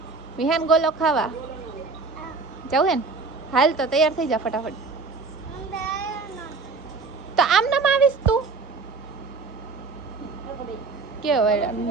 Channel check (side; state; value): left; quieter; 4.2 dB